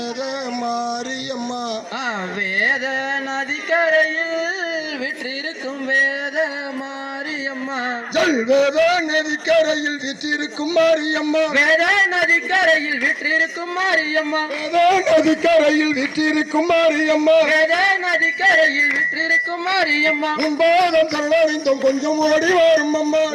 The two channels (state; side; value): identical; both; correlation 1.00